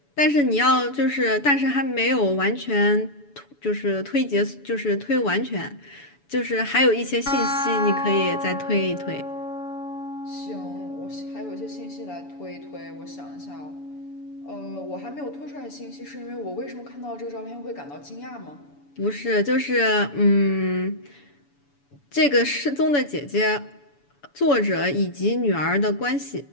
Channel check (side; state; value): right; late; 7.0 ms